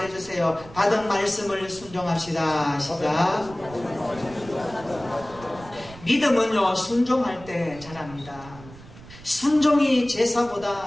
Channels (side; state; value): right; noise; rumble, 18 dB below the sound